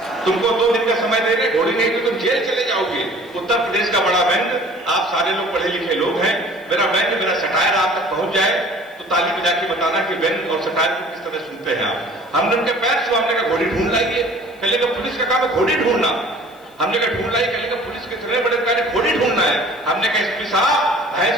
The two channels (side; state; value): left; noise; hiss, 30 dB below the sound